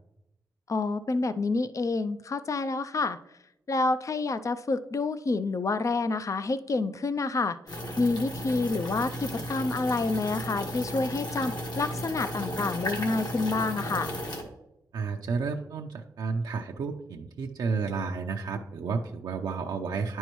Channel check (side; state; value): both; normal; correlation 0.73